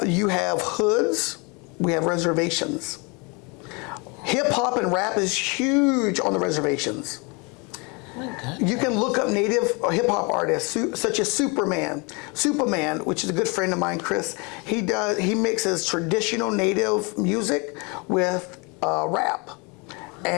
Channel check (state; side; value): quieter; right; 30.1 dB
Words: You have hoods, we have reservations. Hip hop and rap is huge on the reservations. You can look up Native hip hop artists such as Superman, which is a good friend of mine, Chris. He mixes traditional Native music with rap